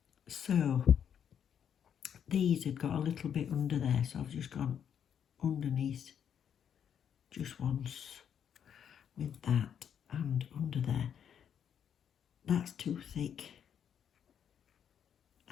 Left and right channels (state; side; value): quieter; right; 8.5 dB